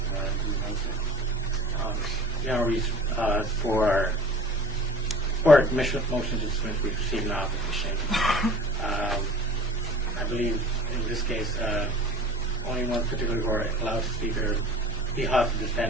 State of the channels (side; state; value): both; normal; correlation 0.45